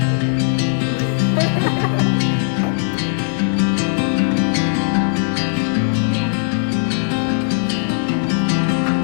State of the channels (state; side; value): silent; right; digital silence